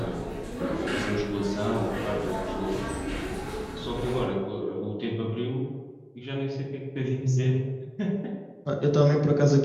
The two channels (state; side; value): identical; both; correlation 1.00